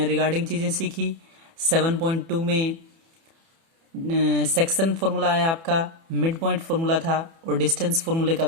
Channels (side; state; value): left; late; 30 ms